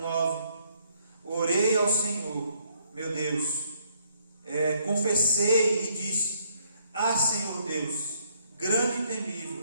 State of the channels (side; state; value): both; inverted; correlation -0.69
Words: Orei ao Senhor, meu Deus, confessei e disse: Ah, Senhor Deus, grande e